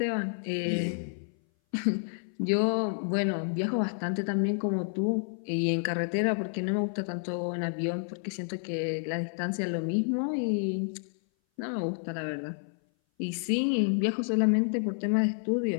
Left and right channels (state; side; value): silent; right; 57 dB below the other